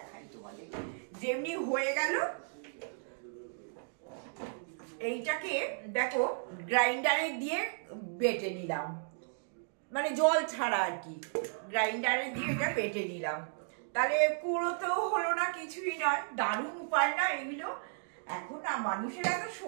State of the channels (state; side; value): silent; left; digital silence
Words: তোমাদের, যেমনি হয়ে গেল এইটাকে দেখো গ্রাইন্ডারে দিয়ে বেটে নিলাম, মানে জল ছাড়া আর কি, গ্রাইন্ডারে দিয়ে এটা বেটে নিলাম। তাহলে কুড়োতেও হলো না, কিছুই নয়। দারুণ উপায় না এগুলো? এখন না মানুষের এত